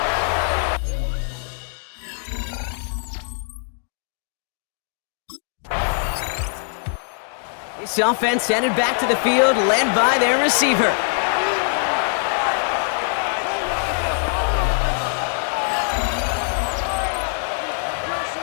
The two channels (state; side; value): silent; right; digital silence